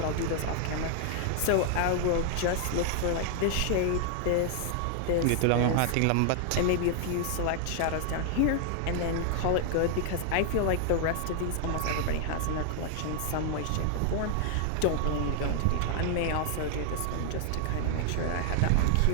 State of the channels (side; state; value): both; different; correlation 0.00